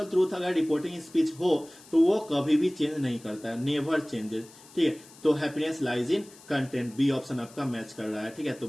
ट्रूथ अगर रिपोर्टिंग स्पीच हो तो वो कभी भी चेंज नहीं करता है, नेवर चेंजेस, ठीक है। तो happiness lies in content, B option आपका मैच कर रहा है, ठीक है। तो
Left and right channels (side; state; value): left; noise; hiss, 22 dB below the sound